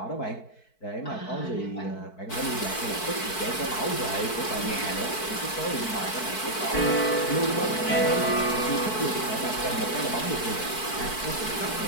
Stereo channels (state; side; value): late; right; 4.6 ms